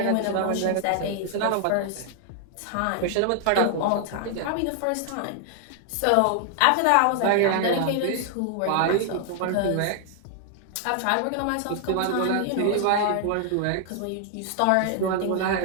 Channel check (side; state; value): both; different; correlation 0.00